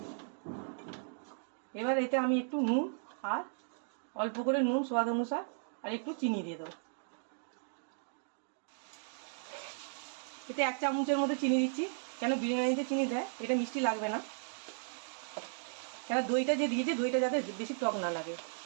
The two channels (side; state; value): left; silent; digital silence